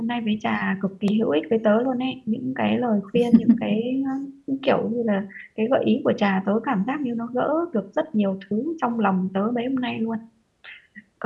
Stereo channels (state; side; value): identical; both; correlation 1.00